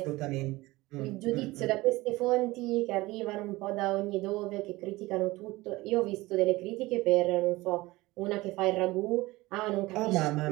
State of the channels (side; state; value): left; quieter; 20.1 dB